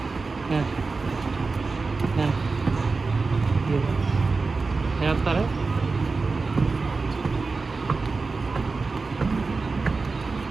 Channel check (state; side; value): quieter; left; 4.1 dB